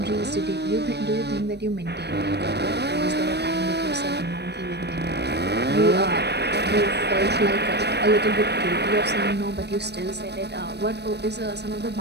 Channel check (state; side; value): late; left; 0.49 ms